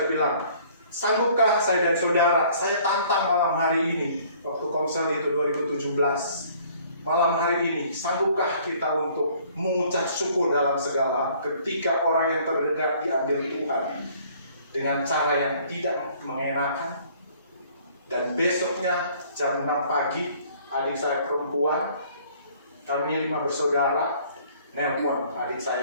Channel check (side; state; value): both; inverted; correlation -0.57